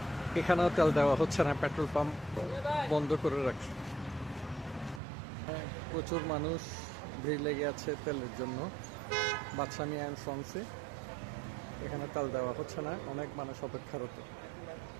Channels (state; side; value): drops out; left; at 5.0 s